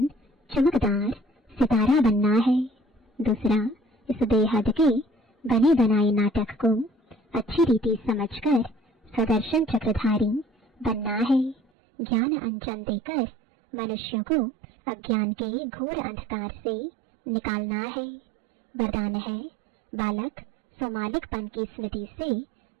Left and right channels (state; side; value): drops out; left; at 11.6 s